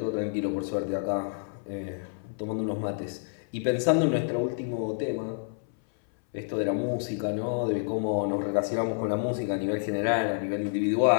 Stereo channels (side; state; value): right; silent; 59 dB below the other